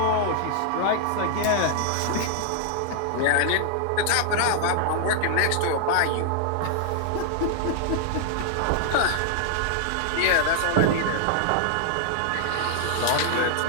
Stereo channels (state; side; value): different; both; correlation -0.01